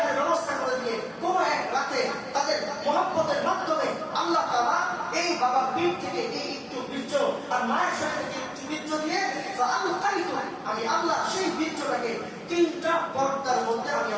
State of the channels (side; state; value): both; identical; correlation 1.00